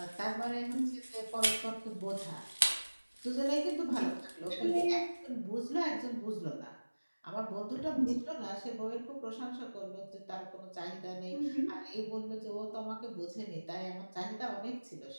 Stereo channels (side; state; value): both; inverted; correlation -1.00